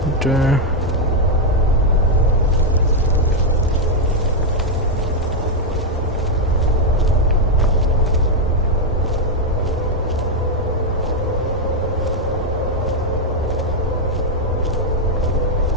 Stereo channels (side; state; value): both; normal; correlation 0.01